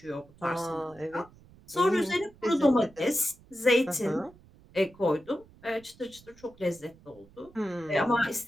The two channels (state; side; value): noise; right; rumble, 25 dB below the sound